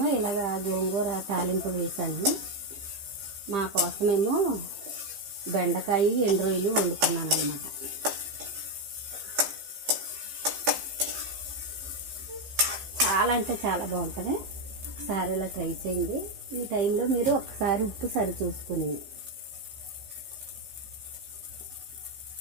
ఇలాగ గోంగూర తాలింపు వేసాను. మా కోసమేమో బెండకాయ ఎండు రొయ్యలు వండుకున్నాను అన్నమాట. చాలా అంటే చాలా బాగుంటుంది. ఒకసారి ఇలా ట్రై చేయండి. ఈ టైంలో మీరు ఒకసారి ఉప్పు సరి చూసుకుని,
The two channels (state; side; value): late; left; 15 ms